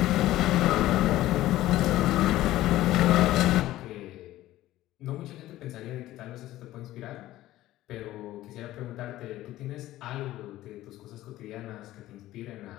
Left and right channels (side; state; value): right; quieter; 15.4 dB